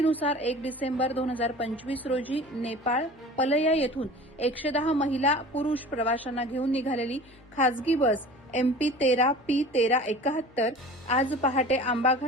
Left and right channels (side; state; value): both; normal; correlation 0.40